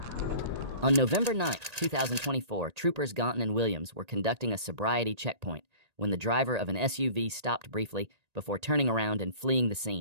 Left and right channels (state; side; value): late; left; 1.8 ms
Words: On November 9, 2024, troopers Gonton and Williams were conducting a sobriety checkpoint when the driver of an SUV stopped briefly before turning around and fleeing the